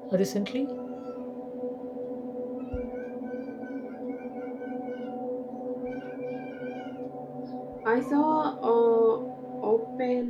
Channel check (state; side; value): identical; both; correlation 1.00